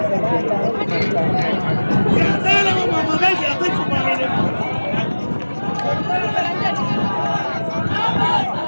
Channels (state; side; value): inverted; both; correlation -1.00